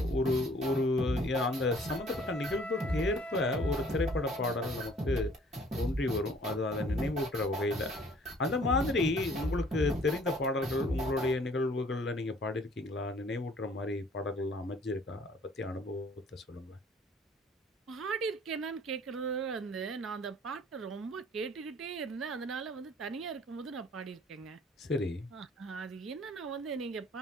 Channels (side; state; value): both; normal; correlation 0.56